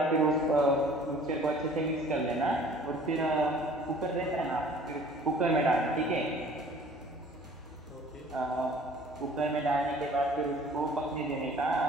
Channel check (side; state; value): both; normal; correlation 0.51